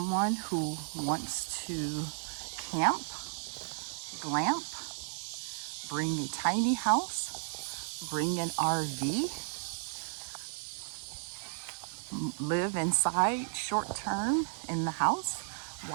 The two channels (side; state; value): left; silent; digital silence